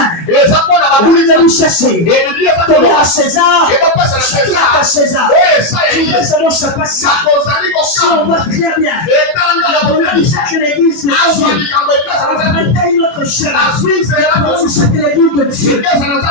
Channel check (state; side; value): late; right; 24 ms